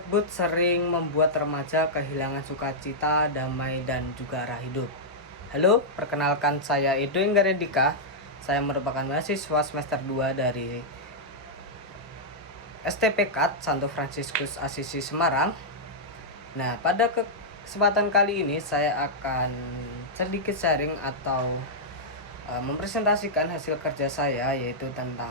sering membuat remaja kehilangan sukacita, damai, dan juga arah hidup. Halo, perkenalkan saya Edo Inggaredika. Saya merupakan mahasiswa semester 2 dari STP KAT Santo Fransiskus Asisi Semarang. Nah, pada kesempatan kali ini saya akan sedikit sharing atau mempresentasikan hasil kerja saya, yaitu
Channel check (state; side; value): normal; both; correlation -0.08